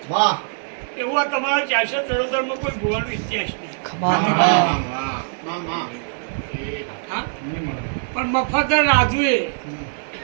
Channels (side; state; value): left; silent; 62 dB below the other